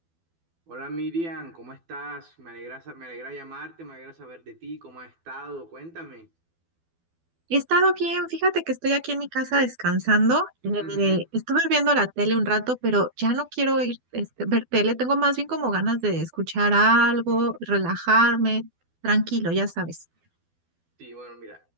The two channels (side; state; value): left; late; 12 ms